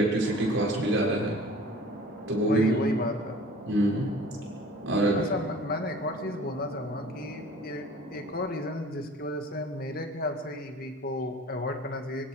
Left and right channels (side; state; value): both; normal; correlation 0.46